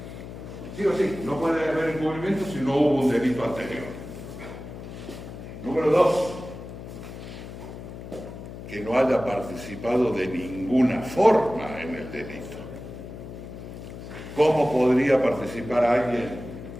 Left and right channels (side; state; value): left; noise; hum, 11 dB below the sound